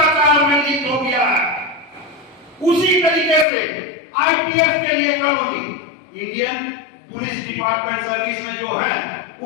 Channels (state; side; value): drops out; right; at 3.5 s